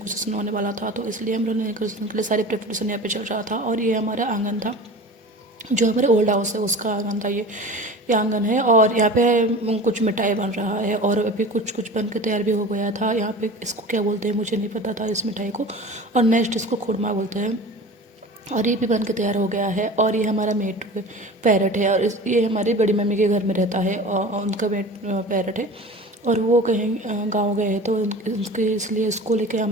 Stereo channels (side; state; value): both; normal; correlation 0.36